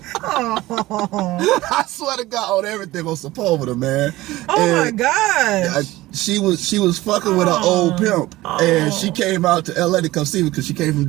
I swear to God on everything on Sepulveda, man. My gosh. She was fucking with an old pimp, and she came out to LA to come see me because she came from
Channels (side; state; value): left; quieter; 17.9 dB